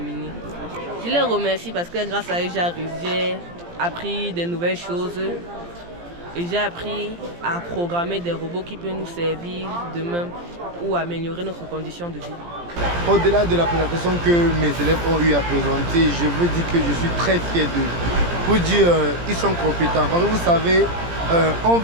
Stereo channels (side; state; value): left; late; 17 ms